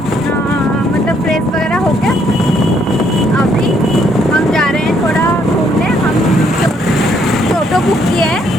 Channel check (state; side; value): normal; both; correlation 0.70